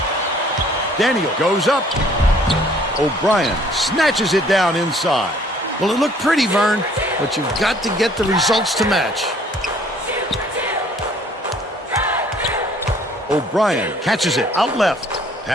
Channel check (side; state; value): both; normal; correlation 0.58